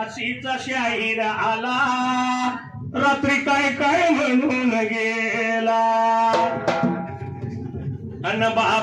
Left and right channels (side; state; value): both; identical; correlation 1.00